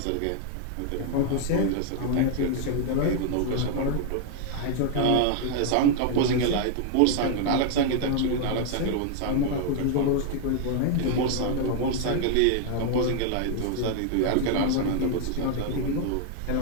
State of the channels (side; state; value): both; different; correlation 0.00